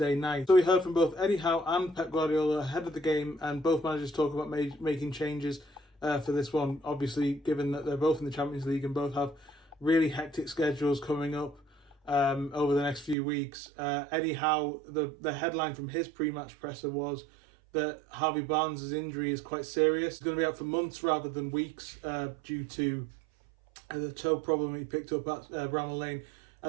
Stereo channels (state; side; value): drops out; left; at 13.2 s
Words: night. So we heard from both Eddie Howe and Pep Guardiola ahead of the game, and both managers talk about making changes for this one. Obviously, given that they're both in the Champions League and both have really hectic schedules coming up over the next few weeks. Eddie Howe, the headline from his pre-match presser was that Harvey Barnes' injury is quite serious. He's going to be out for months rather than weeks due to the toe problem he picked up at Bramall Lane.